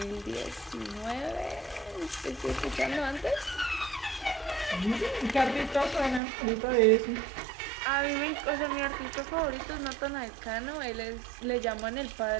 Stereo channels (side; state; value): left; drops out; at 6.2 s